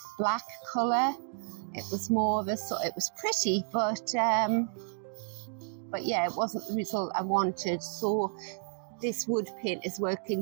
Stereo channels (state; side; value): silent; left; 57 dB below the other